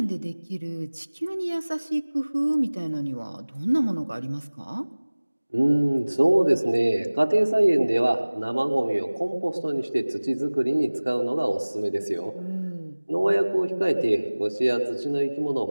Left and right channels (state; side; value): inverted; both; correlation -1.00